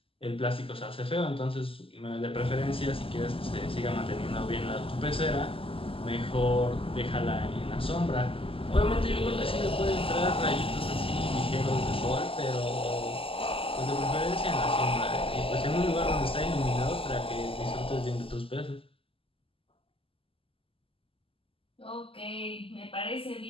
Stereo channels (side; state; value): right; late; 0.26 ms